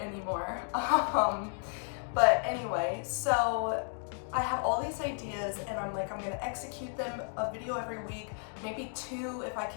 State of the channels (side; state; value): right; silent; 56 dB below the other